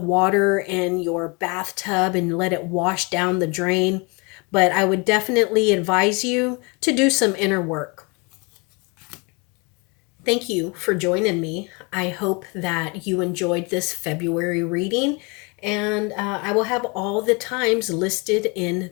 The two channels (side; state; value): right; quieter; 30.0 dB